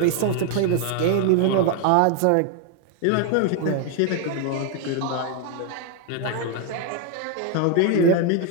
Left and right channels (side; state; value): both; different; correlation 0.01